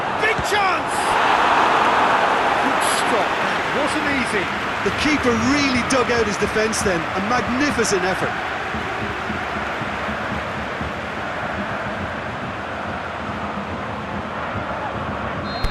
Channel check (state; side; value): identical; both; correlation 1.00